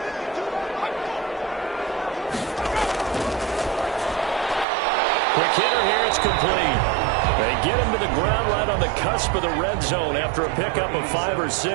Quick hitter here, it's complete. They get him to the ground right on the cusp of the red zone after a pickup of 5 or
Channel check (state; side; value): drops out; left; at 4.7 s